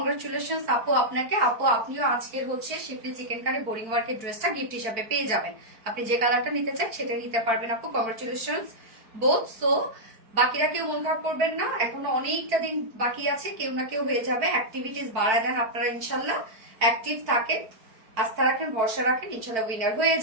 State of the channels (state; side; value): late; left; 4.5 ms